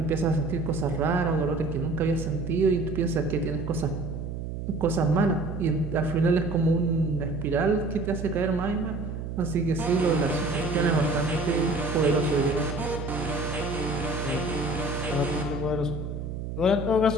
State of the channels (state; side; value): noise; right; hum, 6 dB below the sound